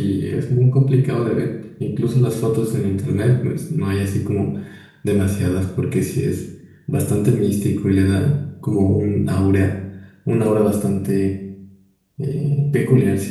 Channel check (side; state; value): both; identical; correlation 1.00